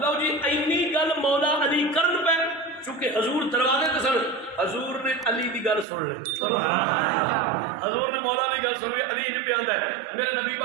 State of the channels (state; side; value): drops out; left; at 5.9 s